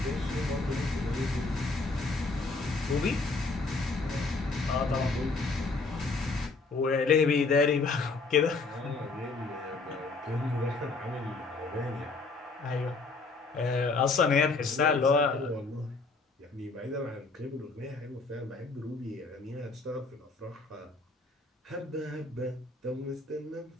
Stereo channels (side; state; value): right; quieter; 3.8 dB